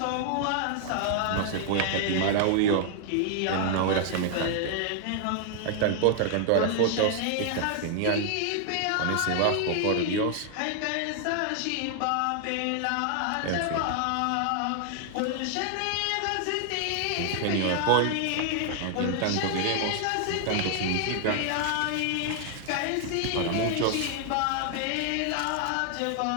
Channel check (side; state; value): both; different; correlation 0.00